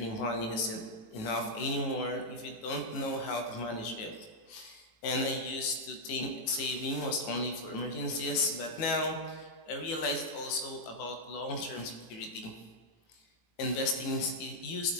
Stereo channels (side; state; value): right; late; 18 ms